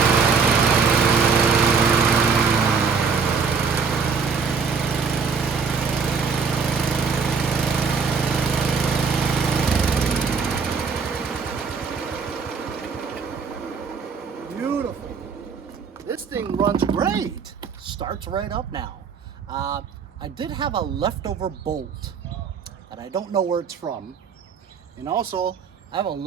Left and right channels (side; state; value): left; quieter; 5.5 dB